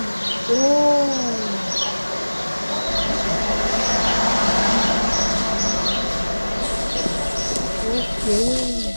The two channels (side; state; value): both; inverted; correlation -1.00